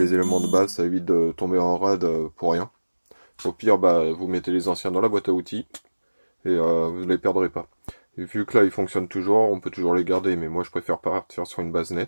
éléments de base, ça évite de tomber en rade pour rien. Au pire vous mettez les anciens dans la boîte à outils et vous ne les perdrez pas. Et vu que là ils fonctionnent toujours, on peut toujours les garder, mais moi je préfère partir sur une base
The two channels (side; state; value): both; inverted; correlation -1.00